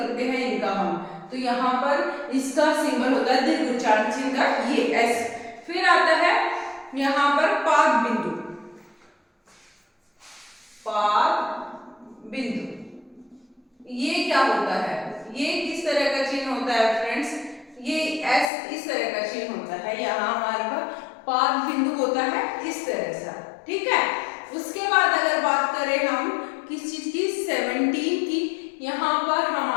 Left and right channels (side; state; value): right; drops out; at 18.5 s